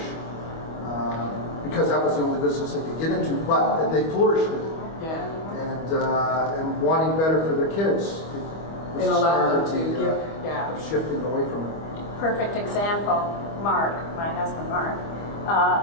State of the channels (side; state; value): right; late; 25 ms